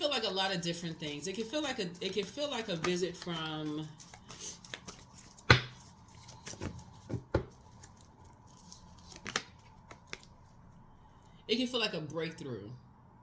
like a lot of different things. It can feel like a visit from it can feel like a breakthrough.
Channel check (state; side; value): identical; both; correlation 1.00